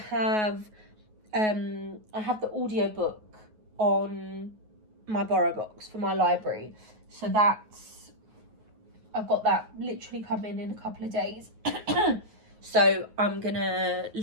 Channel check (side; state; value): left; late; 9.4 ms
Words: have, I have the audiobook on my borrow box for my library. So I've got that literally coming in a couple of days. So I'm going to